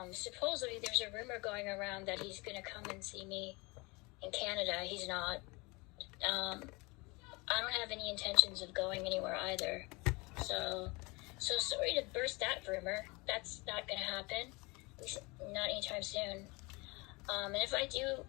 Supposedly there's a rumor going around that he's gonna come and see me in Canada. He's not. I don't have any intentions of going anywhere either. So sorry to burst that rumor. That's not gonna happen. At least not anytime soon. And if I do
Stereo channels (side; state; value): right; quieter; 26.1 dB